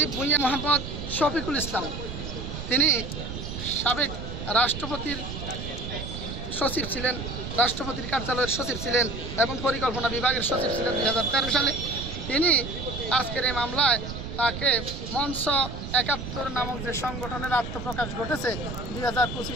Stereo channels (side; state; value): right; noise; rumble, 7 dB below the sound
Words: ভূঁইয়া মোহাম্মদ শফিকুল ইসলাম, তিনি সাবেক রাষ্ট্রপতির সচিব ছিলেন, রাষ্ট্রপতির কার্যালয়ের সচিব ছিলেন এবং পরিকল্পনা বিভাগের সচিব ছিলেন 2013 সালে। তিনি আজকের এই মামলায় তাকে মঞ্চ 71 নামক যে সংগঠনের আত্মপ্রকাশ ঘটেছে